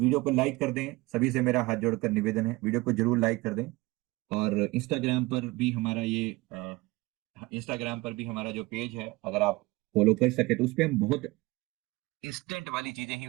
को लाइक कर दें, सभी से मेरा हाथ जोड़कर निवेदन है, वीडियो को जरूर लाइक कर दें। और इंस्टाग्राम पर भी हमारा जो पेज है, अगर आप फॉलो कर सके तो उस पर हम बहुत इंस्टेंट वाली चीजें ही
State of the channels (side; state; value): left; quieter; 21.6 dB